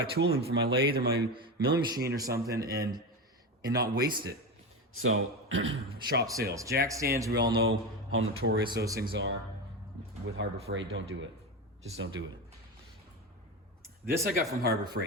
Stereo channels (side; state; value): both; normal; correlation 0.20